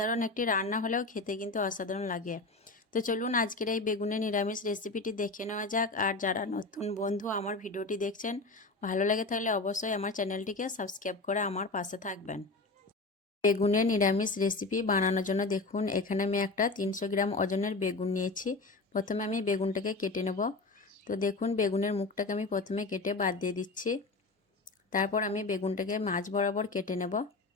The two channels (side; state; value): right; quieter; 3.4 dB